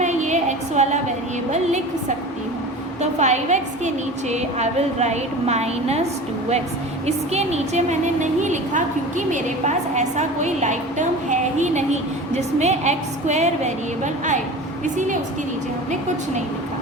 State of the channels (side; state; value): both; normal; correlation 0.35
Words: ये x वाला वेरिएबल लिख सकती हूँ. तो 5x के नीचे आई विल राइट -2x. इसके नीचे मैंने नहीं लिखा क्योंकि मेरे पास ऐसा कोई लाइक टर्म है ही नहीं जिसमें x² वेरिएबल आए, इसीलिए उसके नीचे हमने कुछ नहीं लिखा.